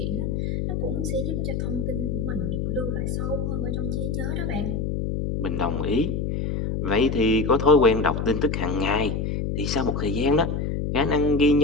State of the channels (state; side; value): noise; left; hum, 1 dB below the sound